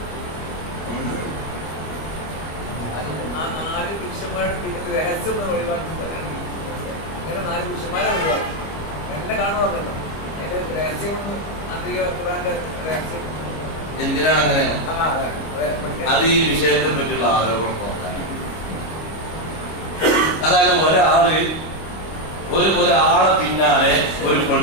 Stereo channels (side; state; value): right; late; 25 ms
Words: എന്തിനാണ് അങ്ങനെ? അത് ഈ വിഷയത്തെ പറ്റിയുള്ള ആരോപണം നോക്കാൻ. അതായത് ഒരാളെ പിന്നാലെ ഒരു